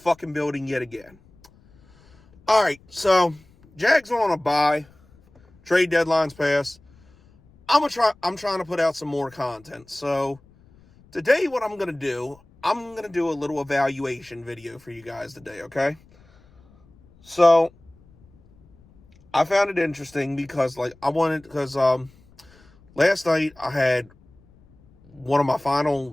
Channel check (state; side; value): noise; left; rumble, 29 dB below the sound